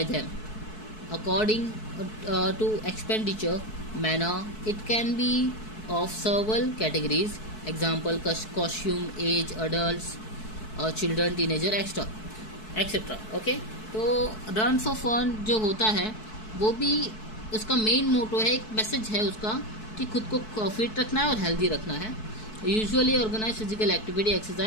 them. according to expenditure manner. It can be of several categories, example costume, age, adults, children, teenager, etcetera. Okay, तो run for fun जो होता है वो भी उसका main motto है, एक message है उसका कि खुद को फिट रखना है और हेल्दी रखना है. Usually organise physical activity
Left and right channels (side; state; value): right; late; 4.6 ms